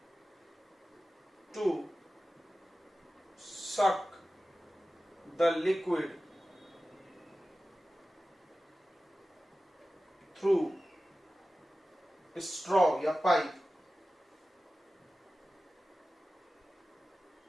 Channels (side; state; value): both; normal; correlation 0.95